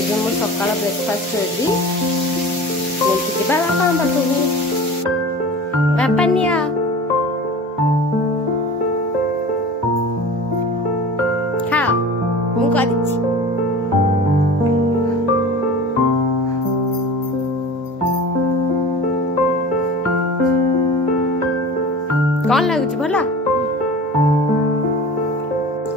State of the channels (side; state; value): both; normal; correlation 0.37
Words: ଏବେ ମୋ ସକାଳ ବ୍ରେକଫାଷ୍ଟ ରେଡି। ନେଇକି ଯିବା ବାପାଙ୍କ ପାଖକୁ। ବାପା ନିଅ। ଖାଅ, ମୁଁ କରିଛି। कौन लगुच भला?